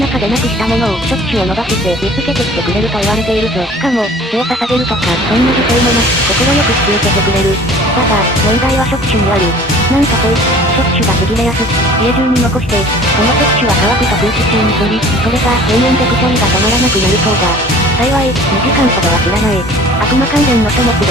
でなくしたものを触手を伸ばして見つけてきてくれると言われているぞ。しかも、血を捧げるとか、そんな犠牲もなく、心よく引き受けてくれる。だが、問題は触手にある。なんとこいつ、触手がちぎれやすく、家中に残して、その触手は乾くと空気中に飛び、それが永遠でくしゃみが止まらなくなるそうだ。幸い、2時間ほどは知らない。悪魔関連の書物で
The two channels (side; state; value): both; normal; correlation 0.48